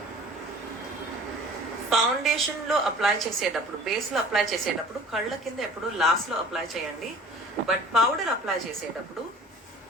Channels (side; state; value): both; normal; correlation 0.46